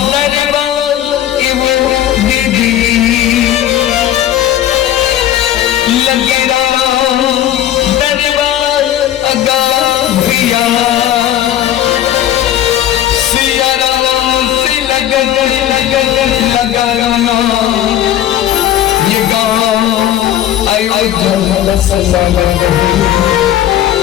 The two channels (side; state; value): right; quieter; 11.9 dB